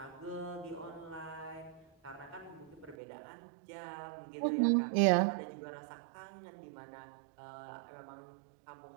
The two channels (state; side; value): drops out; left; at 3.0 s